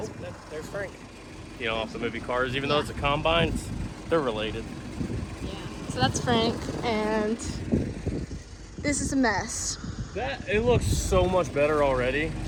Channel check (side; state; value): both; identical; correlation 1.00